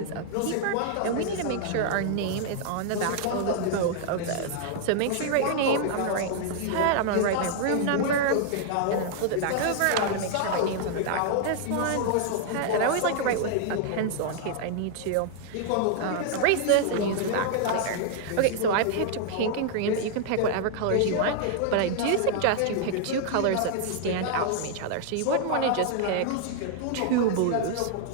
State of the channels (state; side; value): different; both; correlation -0.01